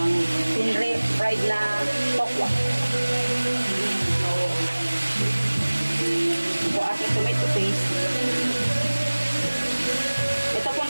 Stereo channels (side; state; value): both; inverted; correlation -1.00